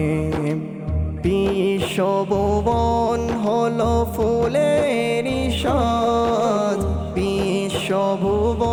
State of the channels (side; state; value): both; identical; correlation 1.00